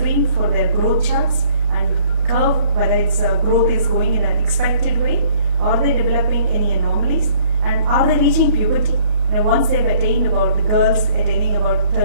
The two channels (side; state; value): left; late; 28 ms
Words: for their growth charts and curve whether its growth is going in an expected way, are they developing any anomalies, and are they reaching puberty. Once they've attained, about the girls attaining about